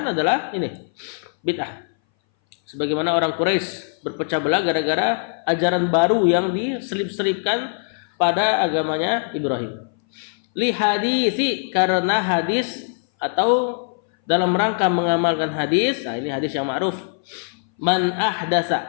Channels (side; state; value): right; silent; 60 dB below the other